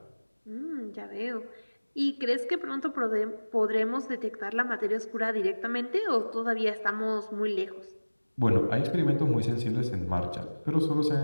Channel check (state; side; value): inverted; both; correlation -1.00